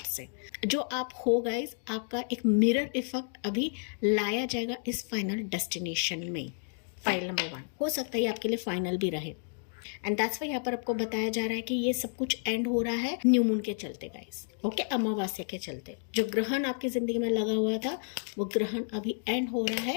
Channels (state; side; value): silent; right; 57 dB below the other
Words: से। जो आप हो गाइस, आपका एक मिरर इफेक्ट अभी लाया जाएगा इस फाइनल डेस्टिनेशन में। फाइल नंबर 1 हो सकता है ये आपके लिए फाइनल भी रहे एंड दैट्स वाई यहाँ पर आपको बताया जा रहा है कि ये सब कुछ एंड हो रहा है न्यू मून के चलते गाइस। ओके, अमावस्या के चलते जो ग्रहण आपकी ज़िंदगी में लगा हुआ था वो ग्रहण अभी एंड हो रहा है